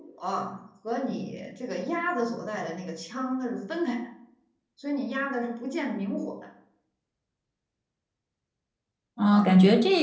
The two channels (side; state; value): both; identical; correlation 1.00